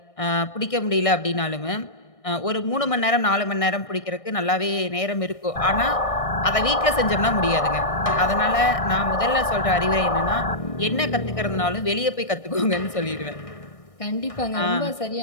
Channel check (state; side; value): late; right; 1.6 ms